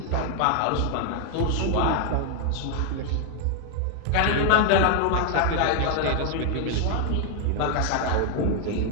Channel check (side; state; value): both; different; correlation 0.00